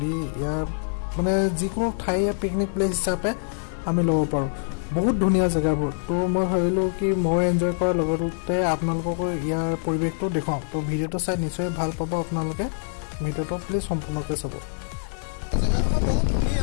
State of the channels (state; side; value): silent; right; 62 dB below the other